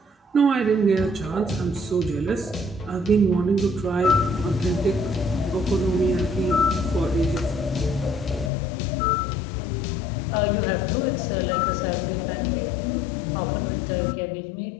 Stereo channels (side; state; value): right; drops out; at 8.5 s